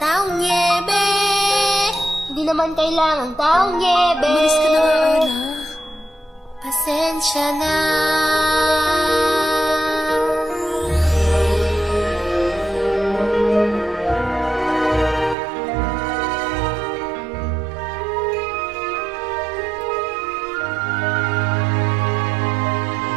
niebe. Hindi naman kailangang taong niebe. Umalis ka na nga, Ana. Pasensya na.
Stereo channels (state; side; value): drops out; left; at 15.4 s